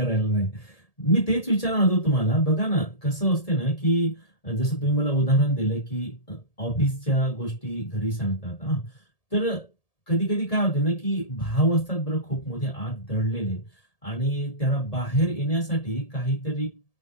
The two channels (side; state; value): right; late; 1.7 ms